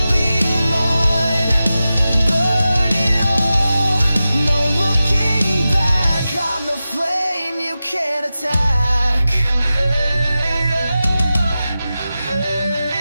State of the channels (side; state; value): both; inverted; correlation -0.93